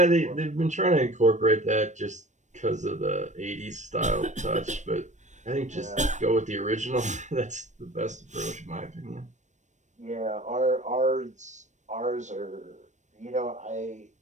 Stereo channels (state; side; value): late; left; 0.35 ms